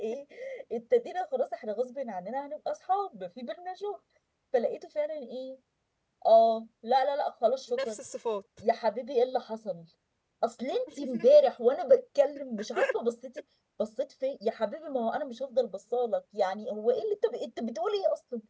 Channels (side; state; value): both; identical; correlation 1.00